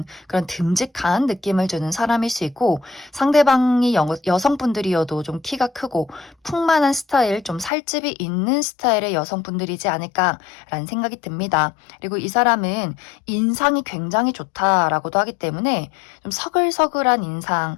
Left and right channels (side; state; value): right; drops out; at 7.7 s